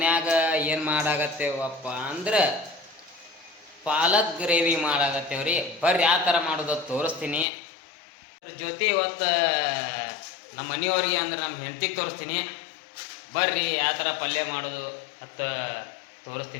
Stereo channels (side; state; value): right; drops out; at 7.5 s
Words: ಏನು ಮಾಡಾಕತ್ತೇವಪ್ಪ ಅಂದ್ರೆ ಪಾಲಕ್ ಗ್ರೇವಿ ಮಾಡಾಕತ್ತೇವ್ರಿ. ಬರ್ರಿ ಯಾವ ಥರ ಮಾಡೋದು ತೋರಿಸ್ತೀನಿ. ಅದ್ರ ಜೊತೆ ಇವತ್ತು ನಮ್ಮ ಮನೆಯವ್ರಿಗೆ ಅಂದ್ರೆ ನಮ್ಮ ಹೆಂಡತಿಗೆ ತೋರಿಸ್ತೀನಿ. ಬರ್ರಿ ಯಾವ ಥರ ಪಲ್ಯ ಮಾಡೋದು ಅಂತ